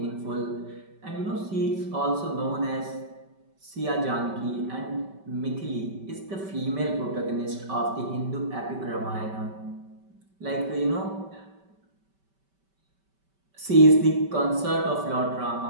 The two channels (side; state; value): left; late; 5.2 ms